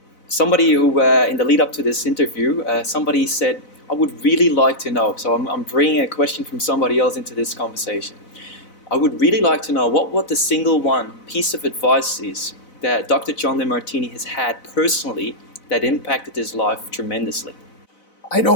Somebody who, in the lead up to this interview, somebody said, I would really like to know, so I'm bringing a question from somebody else into this conversation. I would really like to know what the single one piece of advice is that Dr. John Demartini has had personally that impacted his life tremendously. I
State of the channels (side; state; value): right; late; 4.0 ms